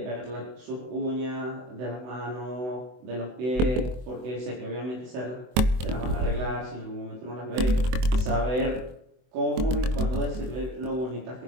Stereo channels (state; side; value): late; left; 24 ms